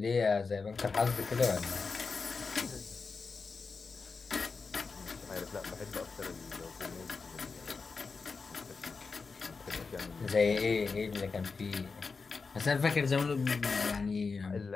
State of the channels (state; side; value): quieter; right; 4.6 dB